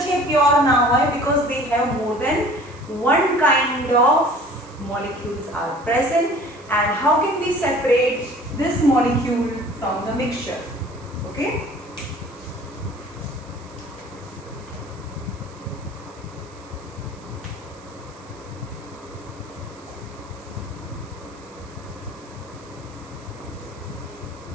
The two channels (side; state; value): right; noise; hiss, 25 dB below the sound